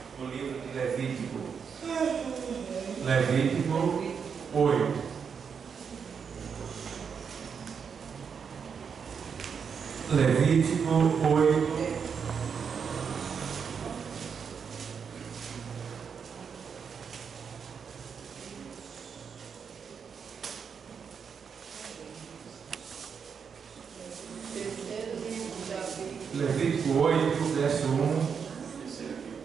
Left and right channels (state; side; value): quieter; left; 6.5 dB